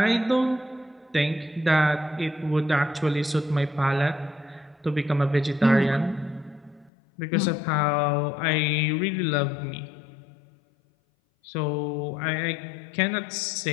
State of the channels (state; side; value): drops out; right; at 6.9 s